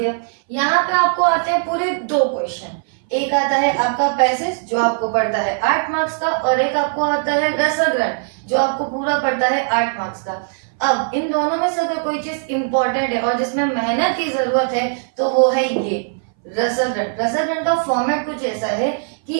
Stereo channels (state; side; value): silent; left; 61 dB below the other